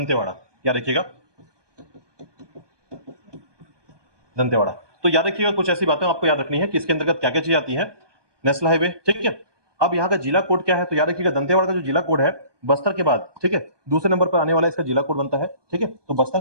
याद रखिएगा दंतेवाड़ा। तो याद रखिएगा कुछ ऐसी बातें आपको याद रखनी है कि इसके अंतर्गत क्या क्या चीजें आती हैं, नेशनल हाईवे। ठीक है, अब यहाँ का जिला कोड क्या है, तो याद रखिएगा दंतेवाड़ा का जो जिला कोड है बस्तर के बाद, ठीक है, दूसरे नंबर पर आने वाला इसका जिला कोड बनता है। ठीक है, तो बस्तर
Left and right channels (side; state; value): left; late; 1.2 ms